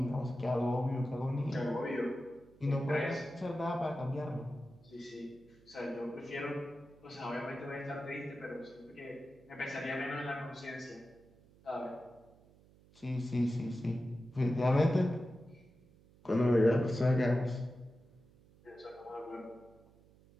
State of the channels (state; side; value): noise; right; hum, 26 dB below the sound